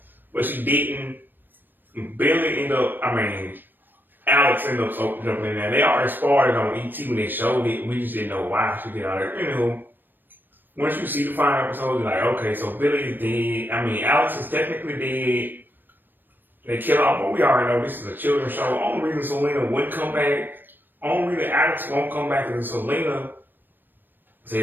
but she didn't. Billy ended up. Alex ended up jumping in there. They already spoiled it on ET when they showed it. We just didn't know why she did all that. Anywho, once you see the final episode, you're like, okay, so Billy is dead. Alex is technically dead. They kill off, but we already know this is a children's show. Only reason Selena wouldn't come back, only reason Alex won't come back is Selena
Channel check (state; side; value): late; left; 0.093 ms